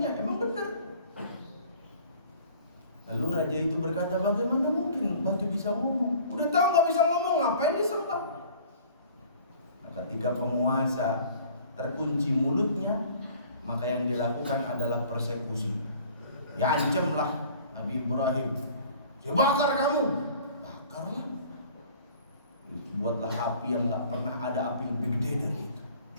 emang benar. Lalu raja itu berkata, bagaimana mungkin batu bisa ngomong? Udah tahu gak bisa ngomong, ngapain disembah? Nah, ketika penguasa terkunci mulutnya, maka yang dilakukan adalah persekusi. Ya ancamlah Nabi Ibrahim, ya bakar kamu, bakarlah. Buatlah api yang gak pernah ada api lebih gede dari itu.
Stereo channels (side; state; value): both; inverted; correlation -0.49